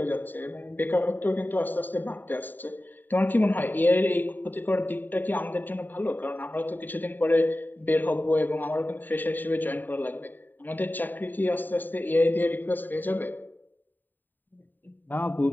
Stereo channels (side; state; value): right; late; 0.090 ms